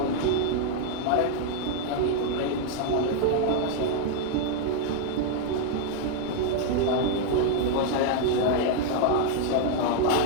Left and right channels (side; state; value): both; different; correlation 0.00